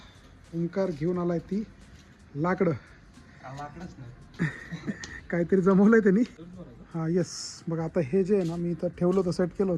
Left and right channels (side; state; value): both; identical; correlation 1.00